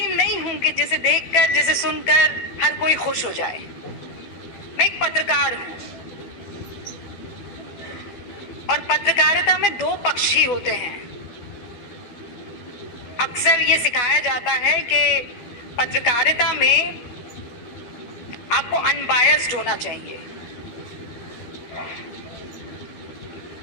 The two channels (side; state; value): right; late; 12 ms